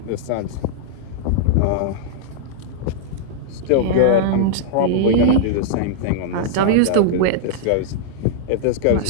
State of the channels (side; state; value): both; different; correlation -0.02